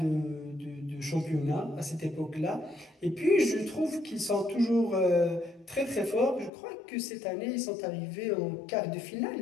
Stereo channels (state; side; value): drops out; right; at 6.5 s